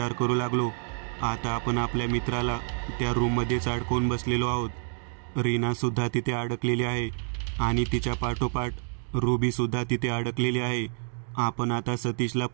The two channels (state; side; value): silent; left; 59 dB below the other